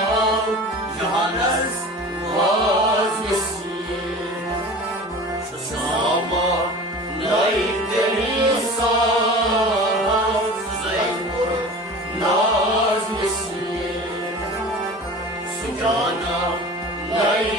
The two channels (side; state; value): both; normal; correlation 0.38